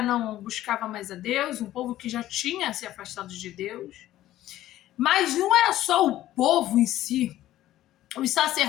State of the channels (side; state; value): right; quieter; 14.0 dB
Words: não buscava mais a Deus, um povo que já tinha se afastado de Deus. Mas não era só o povo em si, os